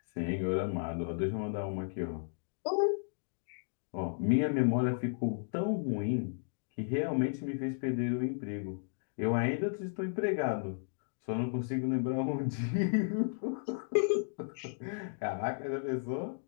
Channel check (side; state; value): right; silent; digital silence